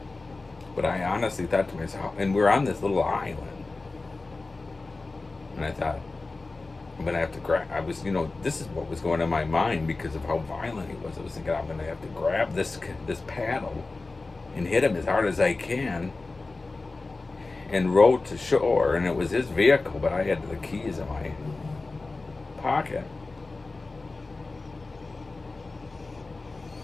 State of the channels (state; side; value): quieter; right; 3.5 dB